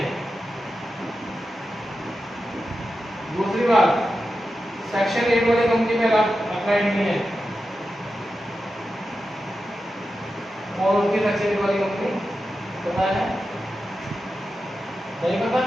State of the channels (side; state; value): both; normal; correlation 0.91